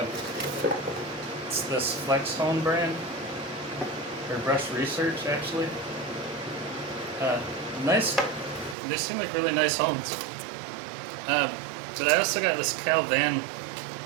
It's this Flex Hone brand, or Brush Research actually. Nice, they seem like really nice hones. But I also got this Cal Van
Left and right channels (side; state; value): left; drops out; at 8.8 s